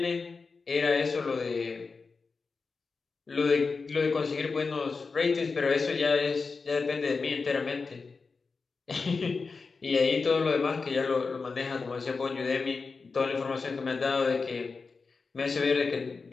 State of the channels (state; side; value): quieter; right; 4.5 dB